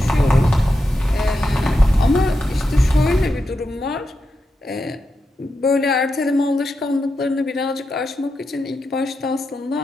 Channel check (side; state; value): both; normal; correlation 0.87